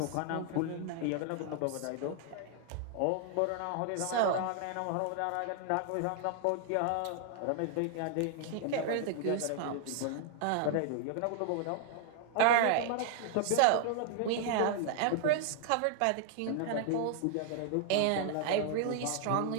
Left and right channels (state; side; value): different; both; correlation 0.00